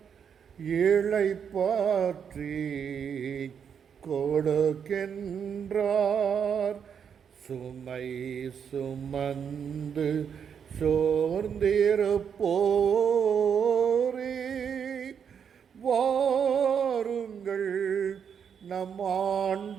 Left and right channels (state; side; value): quieter; left; 7.5 dB